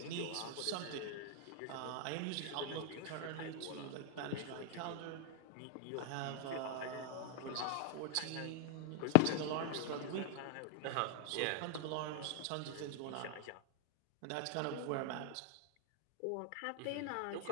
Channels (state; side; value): different; both; correlation -0.01